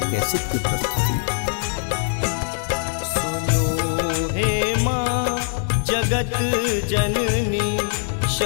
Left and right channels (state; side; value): silent; right; 63 dB below the other